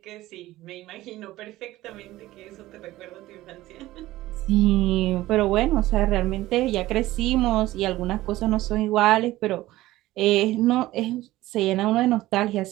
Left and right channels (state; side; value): quieter; left; 16.7 dB